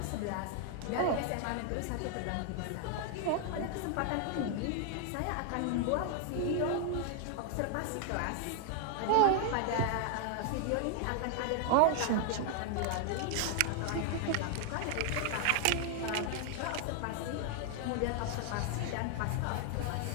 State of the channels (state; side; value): different; both; correlation 0.00